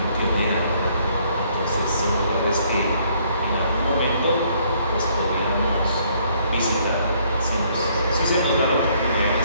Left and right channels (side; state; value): both; inverted; correlation -0.66